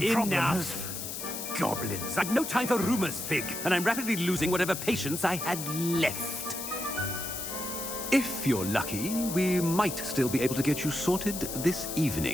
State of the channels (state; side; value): noise; left; hiss, 6 dB below the sound